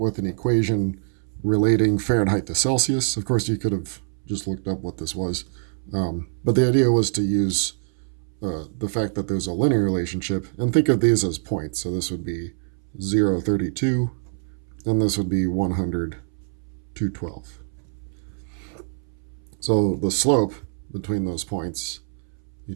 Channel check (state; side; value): silent; left; 62 dB below the other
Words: an equation relating Fahrenheit to Celsius. Of course, you could have just looked up what this was. But the idea was to use the fact that there's a linear relationship and think of these as points. So this would be 0, 32, and this would be 100, 212. So the slope between those points,